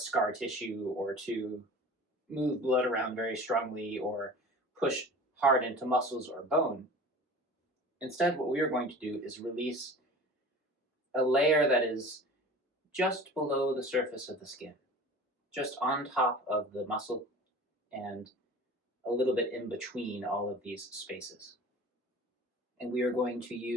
tissue or to move blood around very strongly or push hard into muscles or bone, instead what we are going to do is release a layer that is just below the surface of the skin, just on top of the muscle and a little bit in between all of these spaces. And we are going to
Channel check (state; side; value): normal; both; correlation 0.39